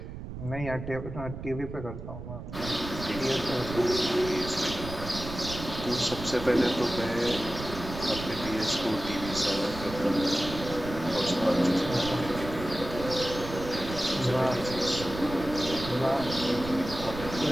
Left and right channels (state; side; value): noise; right; rumble, 9 dB below the sound